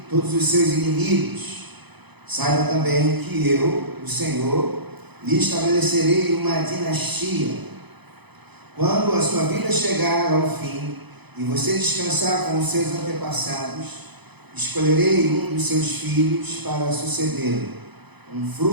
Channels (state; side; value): late; left; 0.99 ms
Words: todos os seus inimigos. Saiba também que eu, o Senhor, lhe estabelecerei uma dinastia. Quando a sua vida chegar ao fim e você descansar com os seus antepassados, escolherei um dos seus filhos para suceder, um